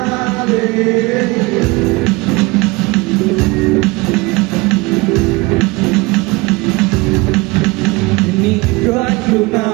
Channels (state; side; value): quieter; left; 24.4 dB